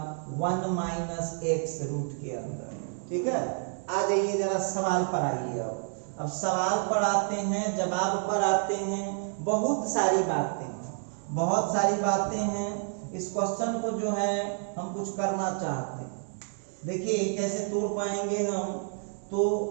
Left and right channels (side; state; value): left; silent; 58 dB below the other